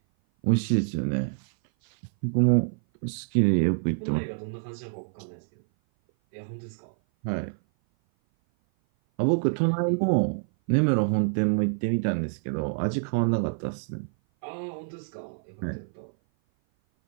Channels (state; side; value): silent; left; 57 dB below the other